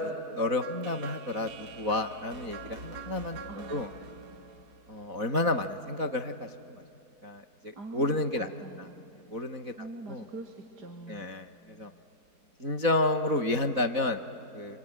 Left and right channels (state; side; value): late; left; 4.1 ms